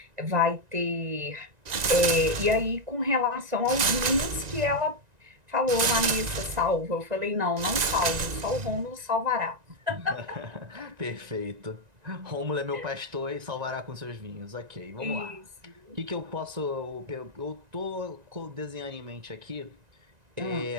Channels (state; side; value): late; left; 1.9 ms